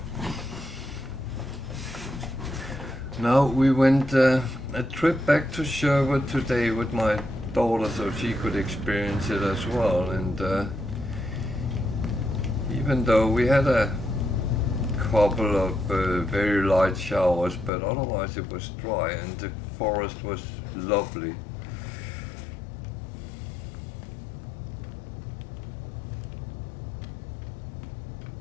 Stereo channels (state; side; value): drops out; right; at 17.7 s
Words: Now we went a trip back to Sherwood today with my daughter so she could experience it as well, and even though we had a couple of very light showers, but otherwise it was dry and the forest was lovely.